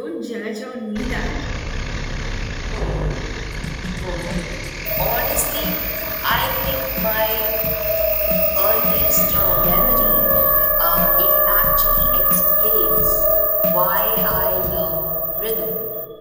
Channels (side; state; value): both; identical; correlation 1.00